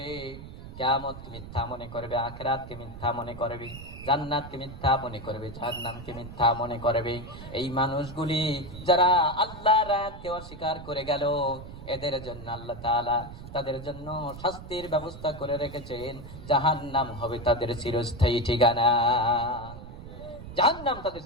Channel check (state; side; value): noise; right; rumble, 13 dB below the sound